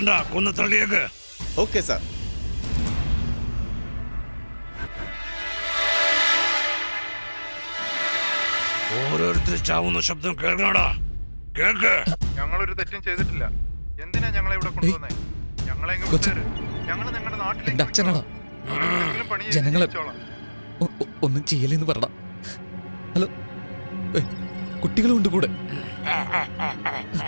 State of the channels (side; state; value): both; inverted; correlation -1.00